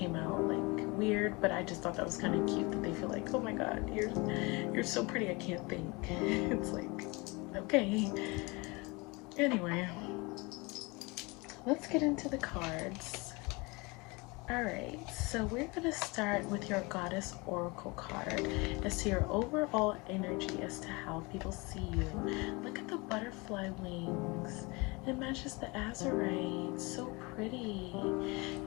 out like weird, but I just thought that was kind of cute that they feel like, oh my god, you're so pretty, I can't think. It's like, okay. Anyway, let's get into the cards. Alright, so we're going to start with your Goddess Oracle card as to your overall energy as to how people see you. Look at the butterfly wings. It matches the Azurite. So pretty.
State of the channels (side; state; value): right; quieter; 26.4 dB